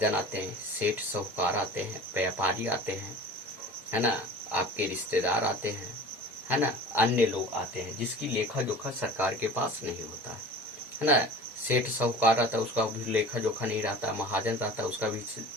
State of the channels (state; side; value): normal; both; correlation 0.39